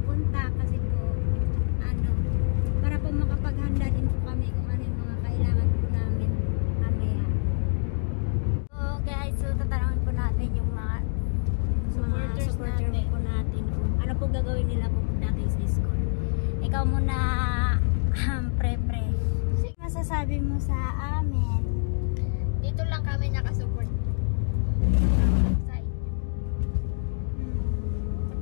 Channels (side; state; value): right; silent; digital silence